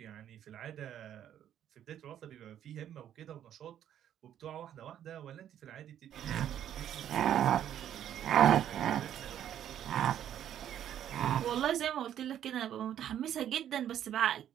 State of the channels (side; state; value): left; quieter; 10.5 dB